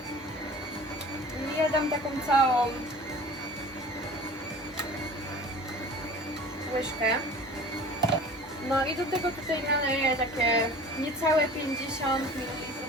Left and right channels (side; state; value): both; normal; correlation 0.42